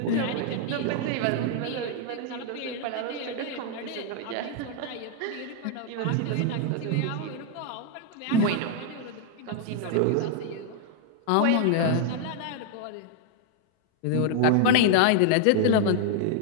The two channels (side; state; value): both; different; correlation 0.00